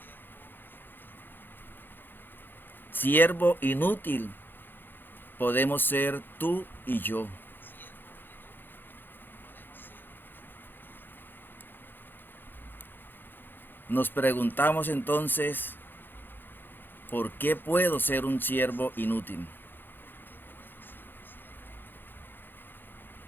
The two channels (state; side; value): late; right; 0.096 ms